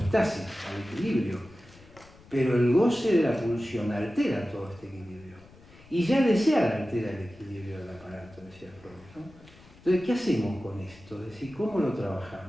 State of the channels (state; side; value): noise; left; rumble, 24 dB below the sound